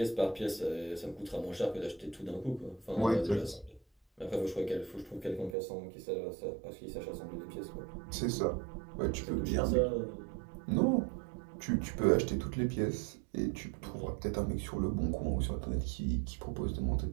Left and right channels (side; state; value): left; drops out; at 5.6 s